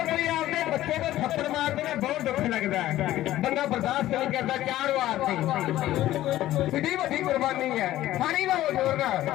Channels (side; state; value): right; quieter; 14.4 dB